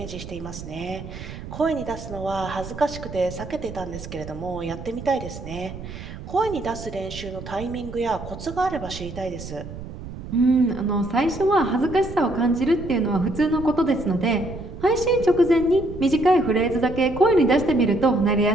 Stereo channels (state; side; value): noise; right; rumble, 11 dB below the sound